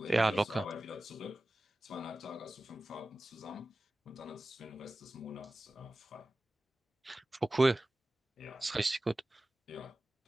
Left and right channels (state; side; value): normal; both; correlation 0.96